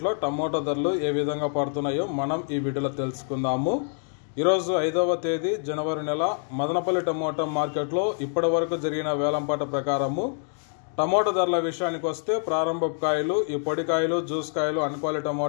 టమోటా ధరలు ఏ విధంగా పడుతున్నాయో మనం ఈ వీడియోలో తెలుసుకుందాము। ఈరోజు 5వ తేదీ జనవరి నెల మదనపల్లి టమోటా మార్కెట్లో ఇప్పటి వరకు జరిగిన వేలంపాట ప్రకారము టమోటా ధరల విషయానికి వస్తే ప్రారంభపు కాయలు, ఈ పొడి కాయలు, జ్యూస్ కాయలు, అన్క్వాలిటీ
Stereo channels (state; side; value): silent; right; 61 dB below the other